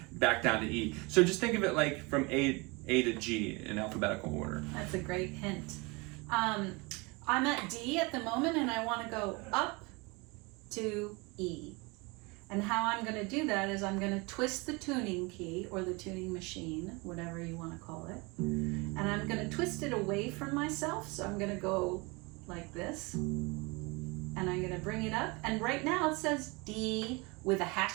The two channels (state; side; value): quieter; left; 27.0 dB